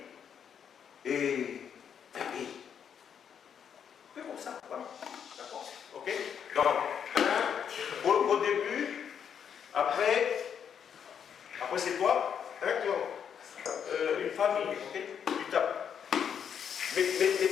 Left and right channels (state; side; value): quieter; right; 7.9 dB